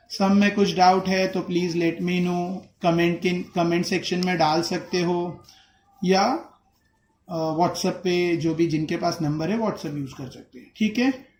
सम में कुछ डाउट है तो please let me know, comment section में डाल सकते हो, या व्हाट्सएप पे जो भी जिनके पास नंबर है व्हाट्सएप यूज कर सकते हैं, ठीक है।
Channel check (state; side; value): identical; both; correlation 1.00